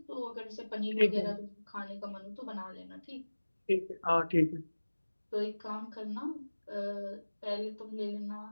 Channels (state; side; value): inverted; both; correlation -1.00